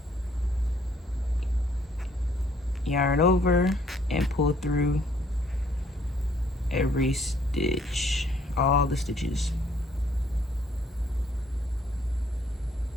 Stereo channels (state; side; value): normal; both; correlation 0.64